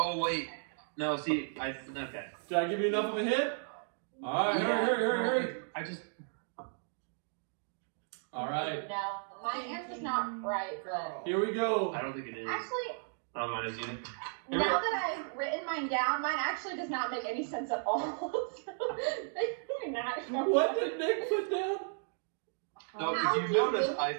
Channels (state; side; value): silent; left; digital silence